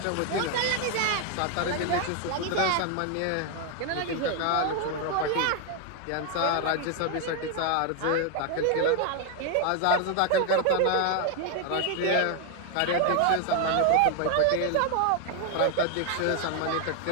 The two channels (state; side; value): different; both; correlation 0.00